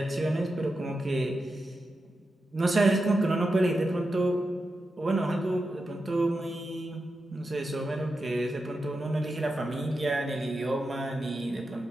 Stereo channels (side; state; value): both; normal; correlation 0.89